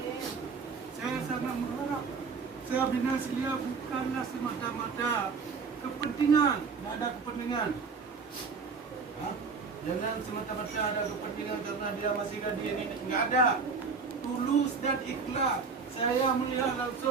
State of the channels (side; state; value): left; quieter; 5.1 dB